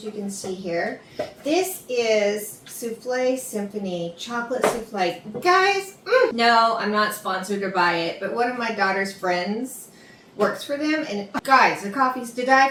you can see here. This is Souffle Symphony chocolate souffle. Guys, no, I'm not sponsored to buy it, but one of my daughter's friends works for them, and guys, the coffee's to die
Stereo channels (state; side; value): identical; both; correlation 1.00